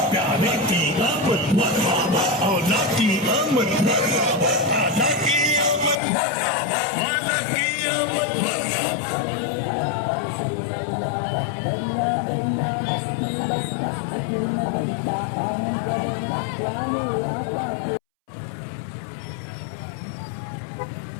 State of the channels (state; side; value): drops out; right; at 6.0 s